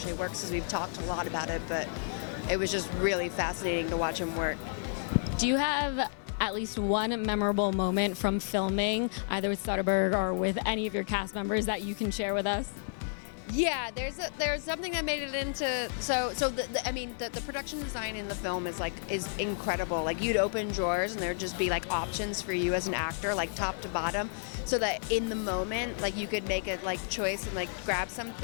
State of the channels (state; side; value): silent; right; digital silence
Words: works, because we've talked a lot about it, but it was just really fascinating to watch him work. Do you have at least one memorable moment from filming, either with Soderbergh or with any of your cast members, that you can share with us? Yeah, there's something that made it into the production design in the film is incredible. Like, you'd open drawers and there'd just be like options for you as an actor, like top to bottom, so that in the moment, like, you could make a like choice and like grab